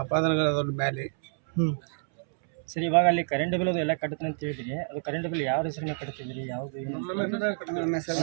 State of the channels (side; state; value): left; silent; 59 dB below the other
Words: ಅಪಾದನೆಗಳ ಮೇಲೆ. ಸರ್, ಇವಾಗ ಅಲ್ಲಿ ಕರೆಂಟ್ ಬಿಲ್ ಅದು ಎಲ್ಲ ಕಟ್ಟುತ್ತೆ ಅಂತ ಹೇಳಿದ್ರಿ. ಅದು ಕರೆಂಟ್ ಬಿಲ್ ಯಾವ ಹೆಸರಿನ ಕಟ್ತಿದ್ರಿ? ಯಾವುದು